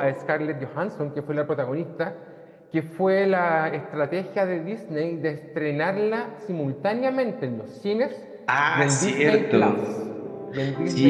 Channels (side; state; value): both; identical; correlation 1.00